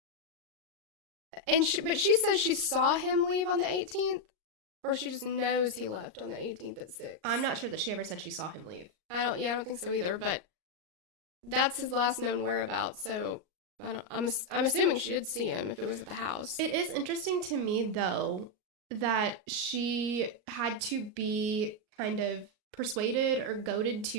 But she says she saw him leave on the 18th, or she just knows he left on the 18th at 6. I'm not sure that she ever said she saw him leave. I don't think so either, but that's his last known whereabouts, so I'm assuming she did see him if it was at the house. It is interesting to me, though, that she had to be kind of persuaded or goaded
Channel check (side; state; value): left; late; 38 ms